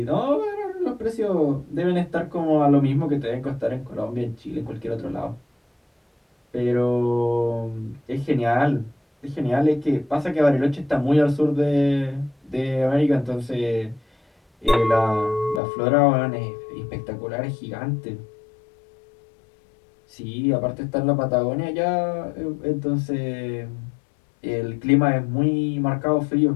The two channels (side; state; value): right; drops out; at 15.6 s